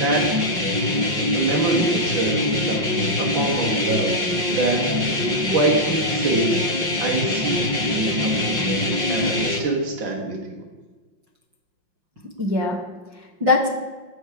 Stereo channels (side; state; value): left; late; 5.6 ms